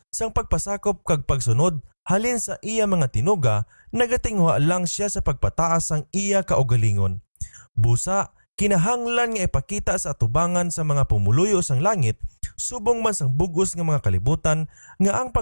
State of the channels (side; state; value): both; inverted; correlation -1.00